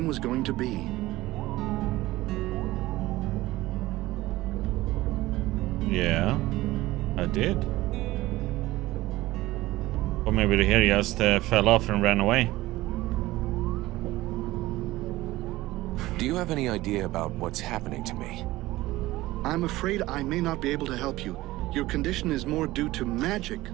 was going to be. Yeah, I did. Or maybe the hair just fell off and ran away. Do you have any idea about what's happening to me? I'm afraid I may not be able to help you. Your condition is more due to magic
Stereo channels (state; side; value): quieter; left; 17.8 dB